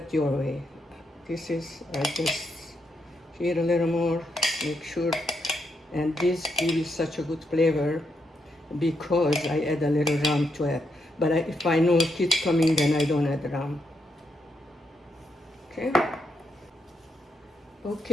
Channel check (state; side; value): normal; both; correlation 0.80